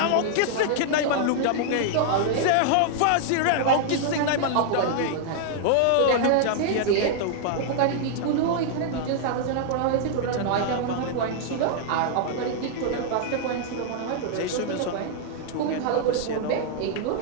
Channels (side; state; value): both; different; correlation -0.01